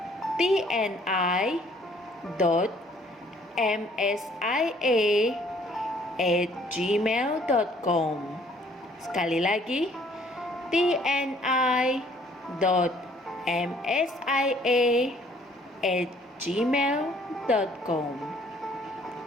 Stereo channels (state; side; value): normal; both; correlation 0.60